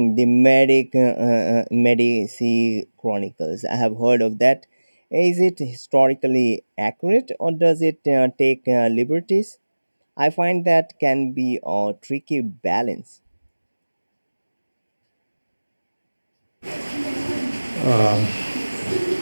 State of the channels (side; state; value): both; inverted; correlation -1.00